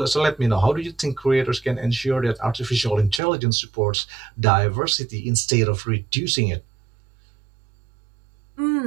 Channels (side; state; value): left; drops out; at 3.2 s